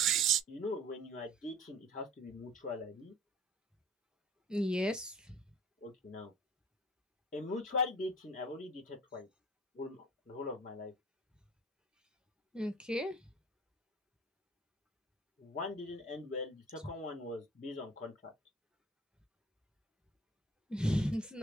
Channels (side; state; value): both; normal; correlation 0.47